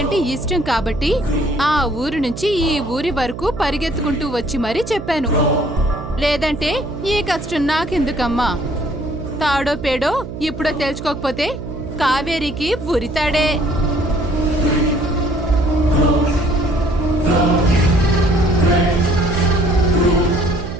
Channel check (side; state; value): right; noise; hum, 10 dB below the sound